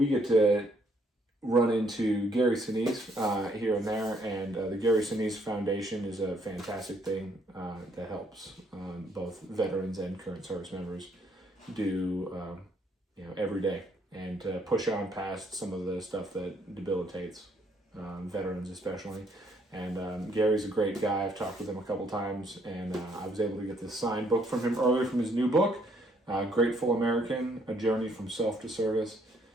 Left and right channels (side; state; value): both; normal; correlation 0.68